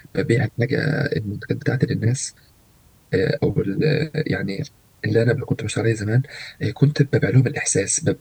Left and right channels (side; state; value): both; identical; correlation 1.00